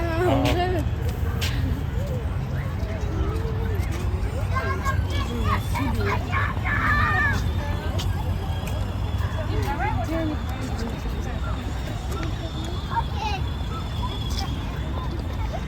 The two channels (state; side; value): identical; both; correlation 1.00